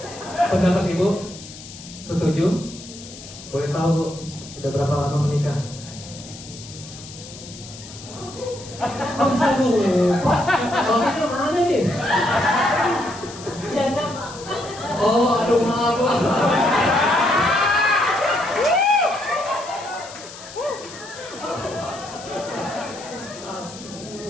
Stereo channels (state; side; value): noise; left; hiss, 15 dB below the sound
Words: Pendapat Ibu? Setuju? Boleh tahu Bu, udah berapa lama menikah? Oh bisa lupa. Suaminya mana nih? Janda. Oh aduh maaf Bu.